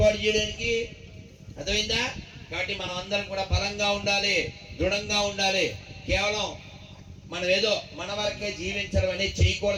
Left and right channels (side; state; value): both; identical; correlation 1.00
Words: చేయడానికి. అర్థమైందా? కాబట్టి మనం అందరం కూడా బలంగా ఉండాలి, దృఢంగా ఉండాలి. కేవలం మనం ఏదో మన వరకే జీవించడం అనేది